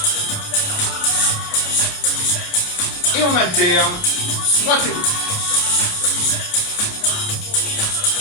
Et on alterne. Droite et gauche.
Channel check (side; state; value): right; late; 28 ms